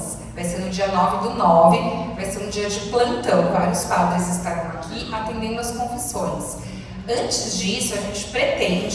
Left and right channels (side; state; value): both; identical; correlation 1.00